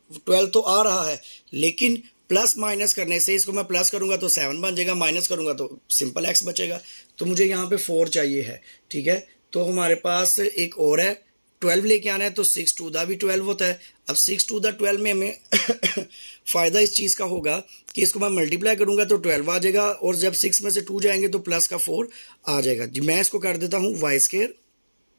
तो आ रहा है, लेकिन प्लस माइनस करने से इसको मैं प्लस करूँगा तो 7 बन जाएगा, माइनस करूँगा तो सिंपल x बचेगा। तो मुझे यहाँ पे 4 चाहिए है, ठीक है। तो हमारे पास एक और है, 12 लेके आना है, तो 6 टू द भी 12 होता है। अब 6 टू द 12 में हमें फ़ायदा इस चीज़ का होगा कि इसको मैं मल्टीप्लाई करूँगा तो 12 आ जाएगा, और जब 6 में से 2 जाएंगे तो प्लस का 4 आ जाएगा जी। मैं इसको कर देता हूँ y²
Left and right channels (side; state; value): both; inverted; correlation -1.00